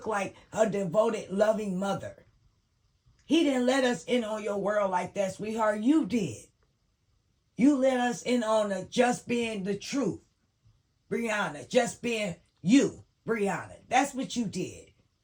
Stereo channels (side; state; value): both; identical; correlation 1.00